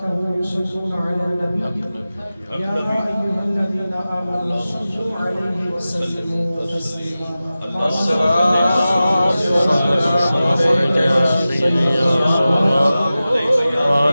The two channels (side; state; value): both; inverted; correlation -0.95